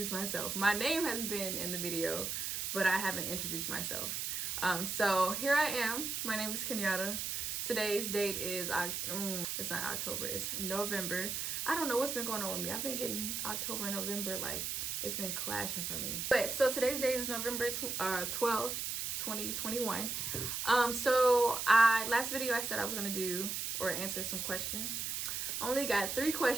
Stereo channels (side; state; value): right; noise; hiss, 2 dB below the sound